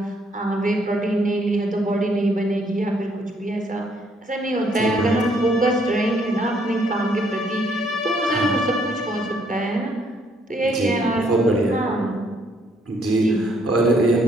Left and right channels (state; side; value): normal; both; correlation 0.68